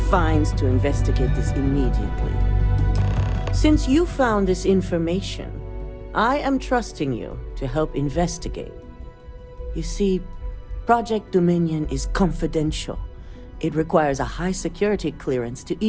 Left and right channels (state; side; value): identical; both; correlation 1.00